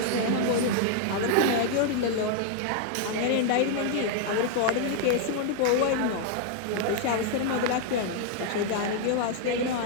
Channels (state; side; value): different; both; correlation 0.00